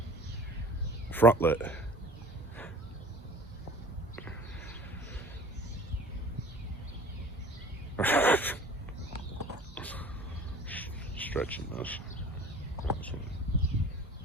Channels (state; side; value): normal; both; correlation 0.45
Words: Front lit. Stretching this.